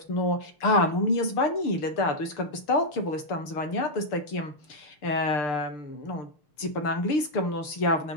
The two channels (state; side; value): late; right; 6.7 ms